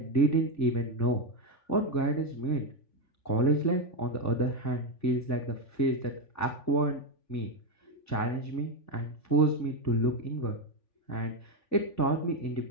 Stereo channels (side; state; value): right; late; 3.5 ms